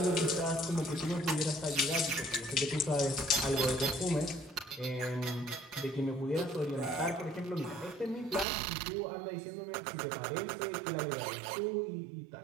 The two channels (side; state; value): left; drops out; at 8.5 s